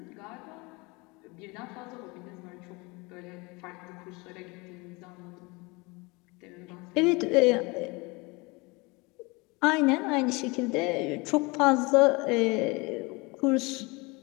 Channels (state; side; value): quieter; right; 26.2 dB